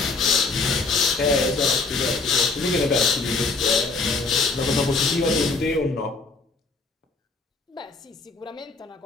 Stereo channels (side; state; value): right; quieter; 3.9 dB